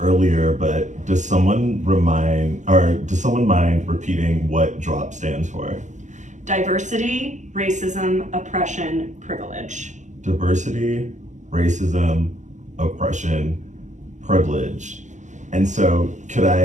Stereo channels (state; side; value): late; left; 0.35 ms